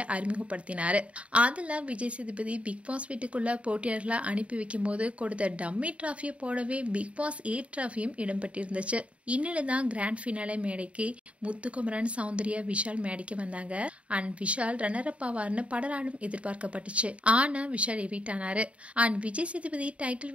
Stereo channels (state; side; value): late; left; 0.063 ms